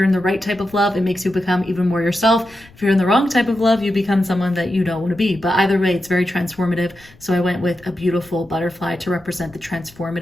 in the right type of love, it makes you become even more yourself. If you're in the wrong type of love, you become someone that you don't want to be. But either way, it's very transformative. So I went with a beautiful butterfly to represent the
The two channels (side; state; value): left; noise; rumble, 26 dB below the sound